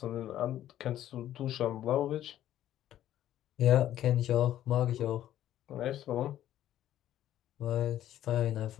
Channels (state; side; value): quieter; right; 12.3 dB